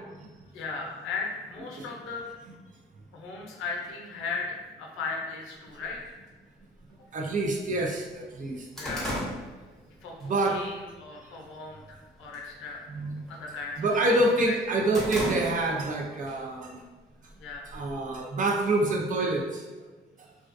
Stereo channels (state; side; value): normal; both; correlation 0.44